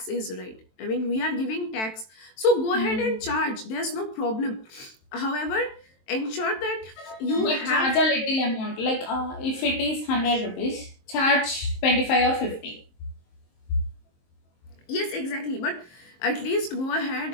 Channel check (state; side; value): late; right; 23 ms